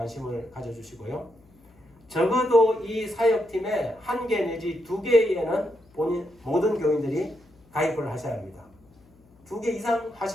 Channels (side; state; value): left; noise; hum, 29 dB below the sound